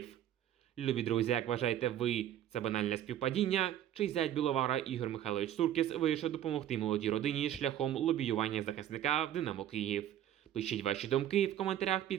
Любі друзі, як вважаєте ви, це банальне співпадіння? Чи зять Біловара Ігор Михайлович Суркіс вирішив допомогти молодій родині шляхом лобіювання захисника в Динамо Київ? Пишіть ваші думки в коментарях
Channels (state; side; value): quieter; left; 11.3 dB